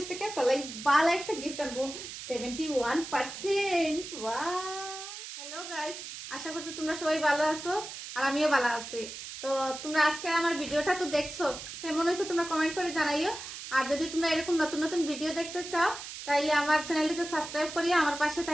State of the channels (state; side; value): noise; right; hiss, 10 dB below the sound